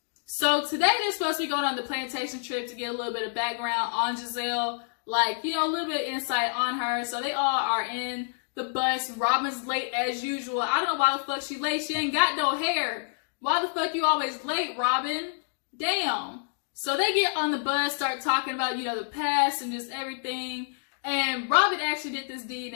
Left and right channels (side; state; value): right; silent; digital silence